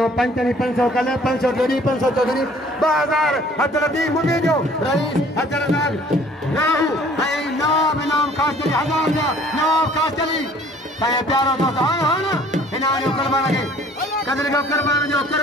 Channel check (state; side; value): normal; both; correlation 0.55